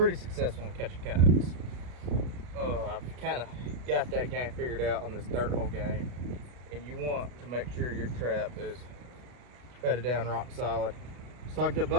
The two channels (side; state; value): left; late; 33 ms